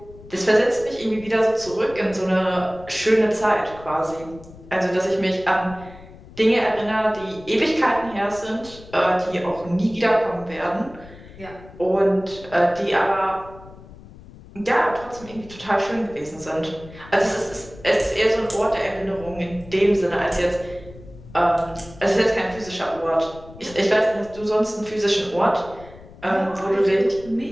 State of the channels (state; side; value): noise; left; rumble, 19 dB below the sound